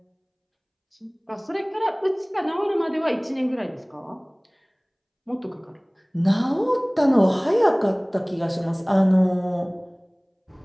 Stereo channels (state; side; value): identical; both; correlation 1.00